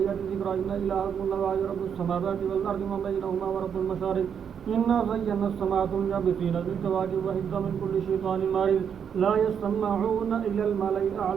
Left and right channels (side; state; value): left; quieter; 7.7 dB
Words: ذكرا إن إلهكم الله رب السماوات والأرض وما بينهما ورب المشارق إنا زينا السماء الدنيا بزينة الكواكب وحفظا من كل شيطان مارد لا يسمعون إلى الملأ